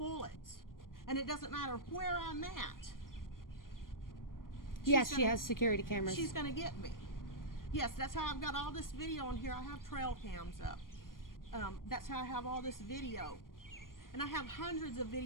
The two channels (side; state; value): right; late; 0.91 ms